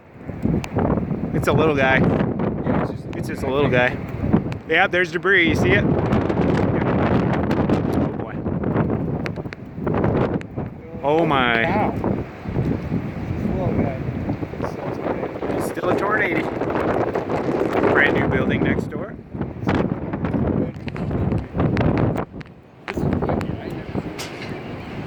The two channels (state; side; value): identical; both; correlation 1.00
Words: It's a little guy. Yeah, It's just a little guy. Yeah, there's debris. You see it? Oh boy. Oh my. Cow. little guy. Still a tornado. Brand new building next door.